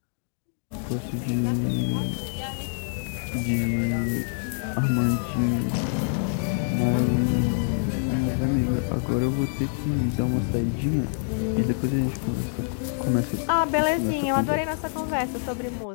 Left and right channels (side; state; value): right; silent; digital silence